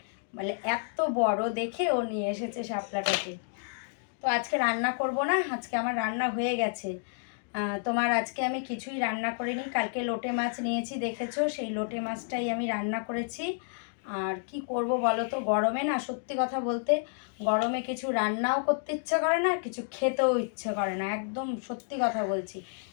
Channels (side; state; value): right; silent; digital silence